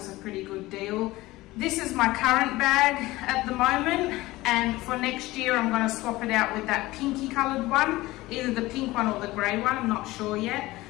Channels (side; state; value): right; quieter; 18.8 dB